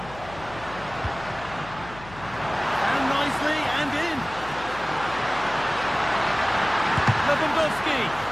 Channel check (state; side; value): noise; left; hum, 17 dB below the sound